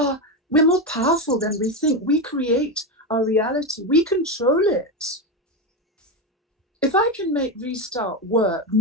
more powerful than we think. We create our reality. We control it. If I can make Restart work,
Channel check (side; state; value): both; normal; correlation 0.14